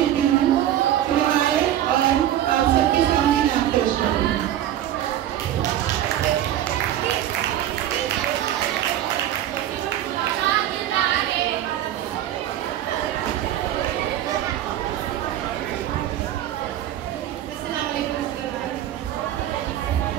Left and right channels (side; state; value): left; quieter; 12.1 dB